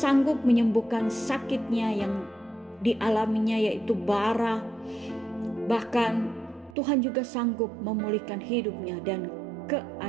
menyembuhkan sakitnya yang dialaminya, yaitu bara. Bahkan Tuhan juga sanggup memulihkan hidupnya dan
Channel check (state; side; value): drops out; left; at 6.8 s